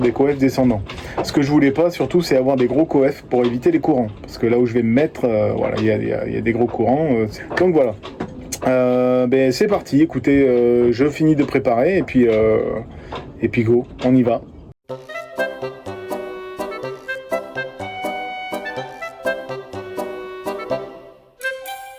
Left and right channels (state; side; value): identical; both; correlation 1.00